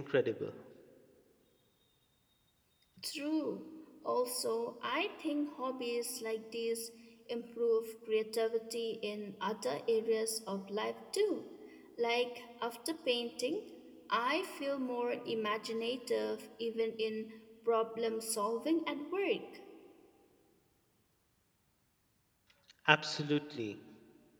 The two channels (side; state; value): both; identical; correlation 1.00